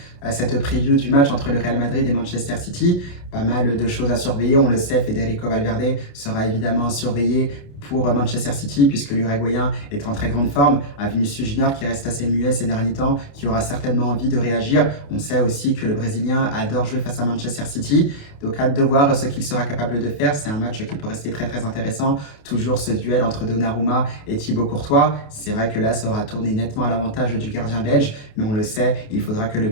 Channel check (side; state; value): right; late; 28 ms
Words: cette preview du match entre le Real Madrid et Manchester City, pas mal de choses à surveiller. On le sait, Federico Valverde sera évidemment surveillé pour Manchester City puisque l'Uruguayen est en très grande forme. Un Vinicius Junior qui reste assez muet ces derniers temps, qui aura certainement envie de réagir. On sait aussi que le Brésilien adore jouer face à Manchester City. Donc hâte de voir ce qu'il sera capable de faire. C'est un match qui peut rester très très intéressant. Toujours ce duel entre Donnarumma et Thibaut Courtois. C'est vrai que là, ça aura tourné nettement à l'avantage du gardien belge. Mais on le sait, il faudra que le